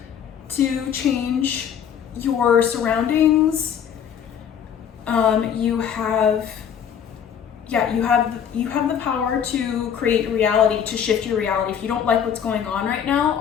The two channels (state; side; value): quieter; right; 8.3 dB